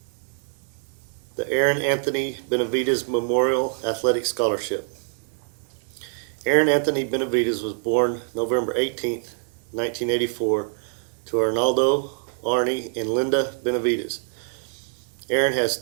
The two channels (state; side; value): silent; left; 62 dB below the other